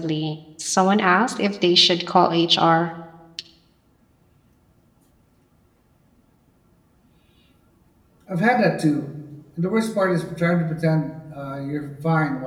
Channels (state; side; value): identical; both; correlation 1.00